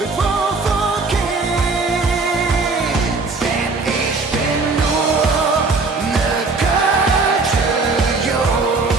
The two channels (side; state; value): left; quieter; 3.9 dB